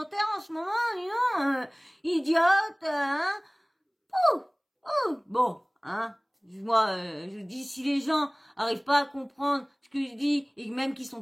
en ce moment, dis donc, idiote, hein, bon, hein, moi, je dis, si les gens arrivent pas à comprendre ce que je dis, et même qu'ils sont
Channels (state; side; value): identical; both; correlation 1.00